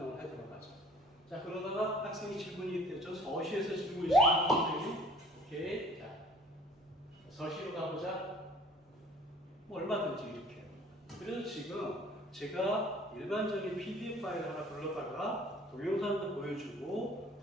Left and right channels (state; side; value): normal; both; correlation 0.51